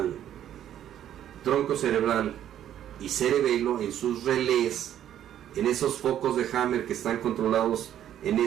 tronco cerebral y cerebelo, en sus relés, en esos focos de Hammer que están controlados en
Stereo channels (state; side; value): quieter; left; 10.9 dB